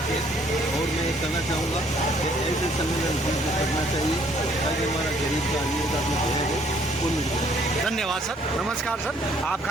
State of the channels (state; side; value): normal; both; correlation 0.63